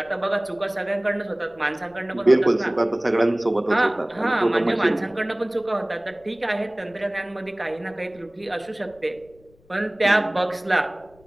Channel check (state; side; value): noise; left; rumble, 29 dB below the sound